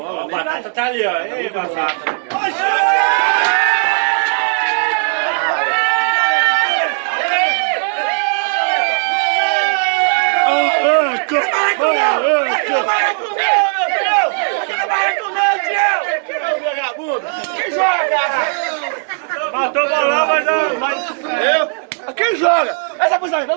né? Batata tá ali, ó. Ei, batata. Quem joga? Matou o bolão, mas eu. Quem joga? Essa posição aí,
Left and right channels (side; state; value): left; silent; 56 dB below the other